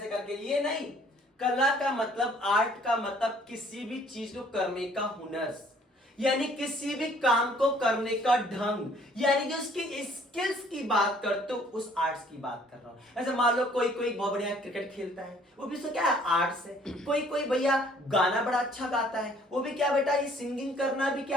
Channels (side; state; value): both; normal; correlation 0.59